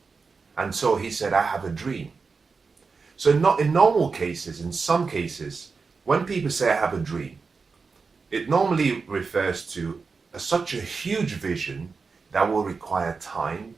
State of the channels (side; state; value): left; quieter; 4.8 dB